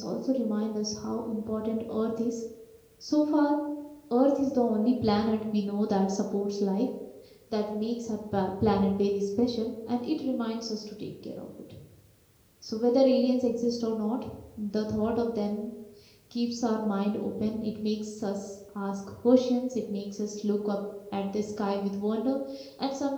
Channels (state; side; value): identical; both; correlation 1.00